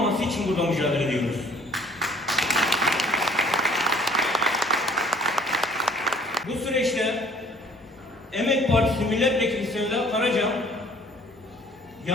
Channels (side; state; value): both; normal; correlation 0.55